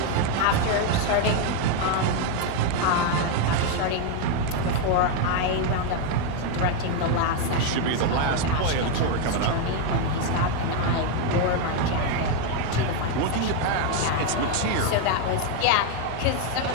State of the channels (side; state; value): both; different; correlation 0.01